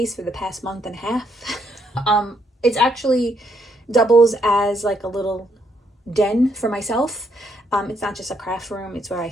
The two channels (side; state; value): both; normal; correlation 0.74